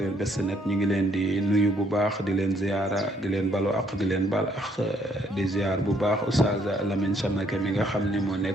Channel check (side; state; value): both; normal; correlation 0.68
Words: Best Net ñu ngi leen di nuyu bu baax di leen ziyaara di leen balu ak di leen bal ak di ziyaar bu baax Oustaz Lamine Samake mi nga xam ne moo